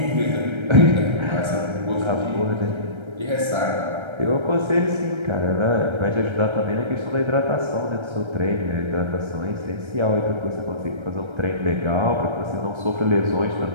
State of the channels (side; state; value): left; late; 1.3 ms